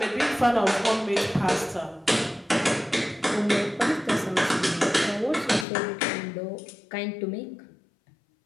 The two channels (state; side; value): drops out; right; at 5.7 s